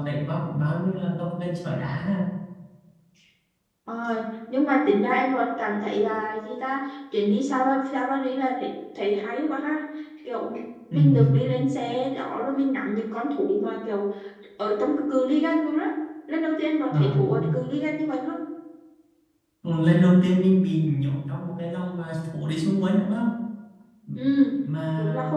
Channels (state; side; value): identical; both; correlation 1.00